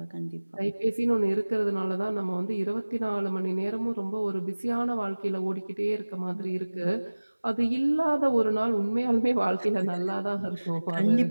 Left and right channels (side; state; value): both; inverted; correlation -1.00